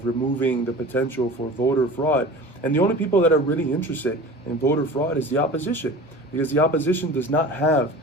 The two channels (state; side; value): normal; both; correlation 0.38